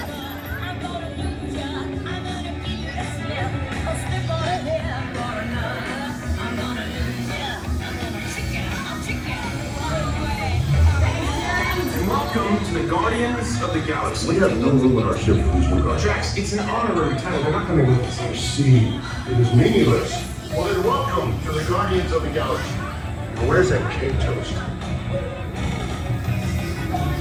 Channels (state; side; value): identical; both; correlation 1.00